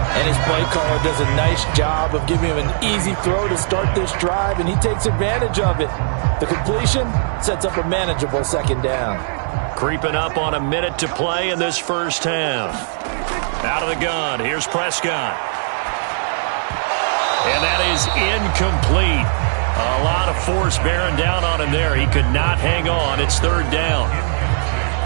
And his play caller does a nice job of giving him an easy throw to start this drive, and he takes advantage of it. The completion sets up a manageable 2nd down. Creeping up on a minute to play in this first half. Out of the gun. Here's Prescott. And that is incomplete. A lot of force bearing down on him there. He could not hang on. It's 3rd down.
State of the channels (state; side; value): silent; left; digital silence